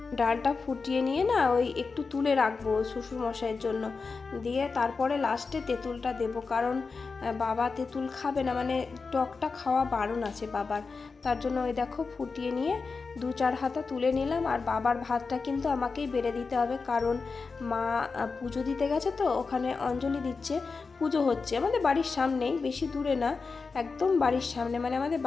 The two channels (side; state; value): right; quieter; 4.5 dB